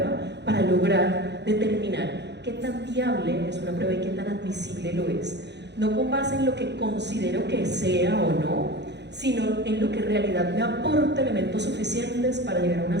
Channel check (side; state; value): left; late; 0.50 ms